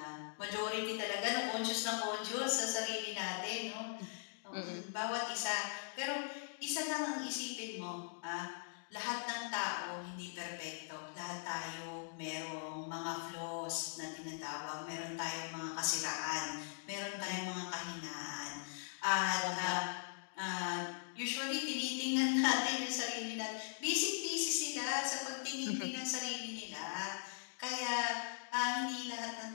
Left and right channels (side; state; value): right; silent; digital silence